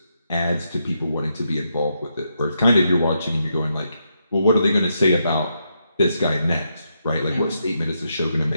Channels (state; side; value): inverted; both; correlation -0.81